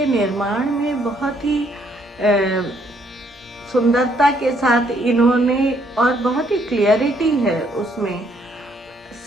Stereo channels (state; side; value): normal; both; correlation 0.69